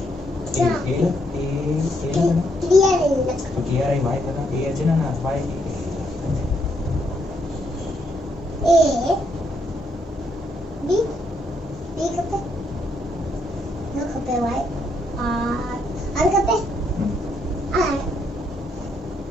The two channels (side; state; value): both; normal; correlation 0.75